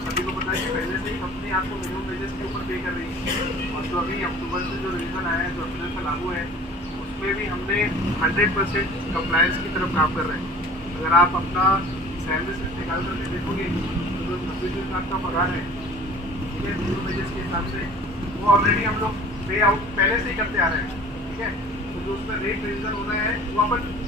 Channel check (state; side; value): normal; both; correlation 0.45